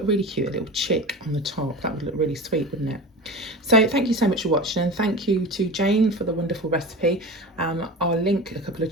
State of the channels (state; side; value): normal; both; correlation 0.31